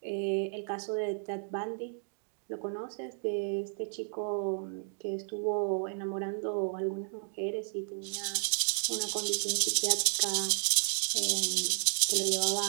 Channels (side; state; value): left; silent; digital silence